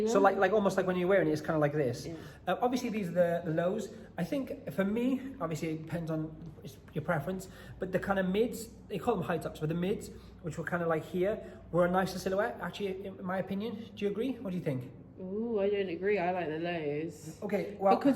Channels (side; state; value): both; identical; correlation 1.00